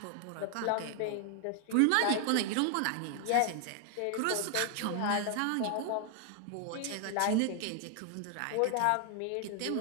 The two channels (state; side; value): different; both; correlation 0.00